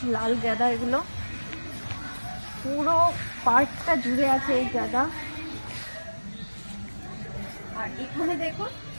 লাল গাঁদা, এগুলো পুরো পার্কটা জুড়ে আছে এই গাঁদা। আর এখানে দেখুন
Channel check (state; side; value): inverted; both; correlation -1.00